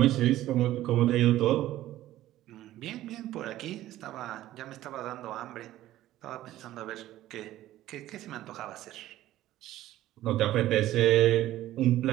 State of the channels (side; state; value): left; quieter; 14.4 dB